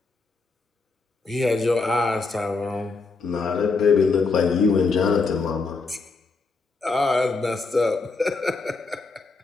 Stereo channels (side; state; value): right; quieter; 4.1 dB